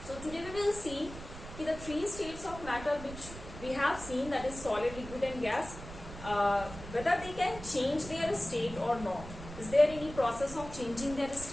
So today we will see the three states of matter which we have seen, that is solid, liquid and gas, whether they can change their state or not. Is there any process of changing their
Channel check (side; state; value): right; noise; rumble, 13 dB below the sound